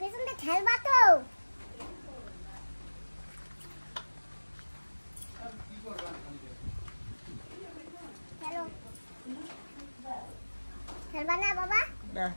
খেলবা তো। চলো, খেলবা না বাবা?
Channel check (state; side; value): inverted; both; correlation -1.00